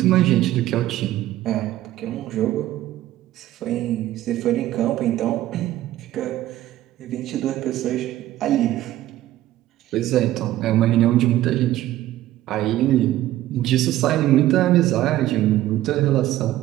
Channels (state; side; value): quieter; left; 14.3 dB